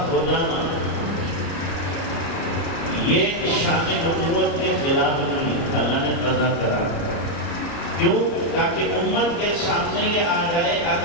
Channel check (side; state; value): right; late; 29 ms